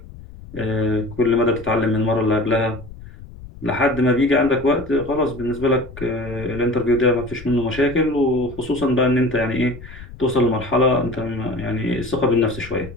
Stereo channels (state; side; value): noise; left; rumble, 16 dB below the sound